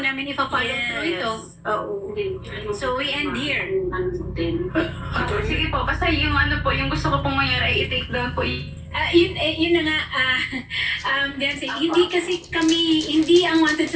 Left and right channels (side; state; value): both; identical; correlation 1.00